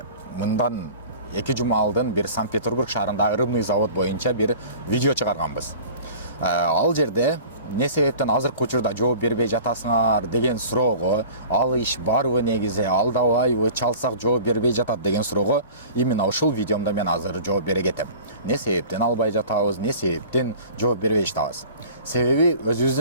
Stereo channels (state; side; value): inverted; both; correlation -0.43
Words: мындан 2 жума алдын бир Санкт-Петербург шаарындагы рыбный завод боюнча бир видео чыгарганбыз. Ал жерде не себептен азыркы учурда жооп бербей жатасыңар деген суроого, ал иш барбы негизи, алдабайбы, чалсак жооп бербей жатат деген суроого именно ушул видеомдо мен азыр жооп бере кетем. Не себептен албай жатабыз, не себептен жооп бербей жатабыз. Себеби